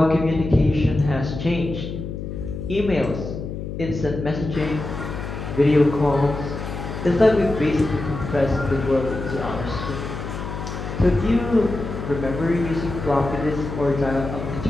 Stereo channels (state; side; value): noise; left; hum, 7 dB below the sound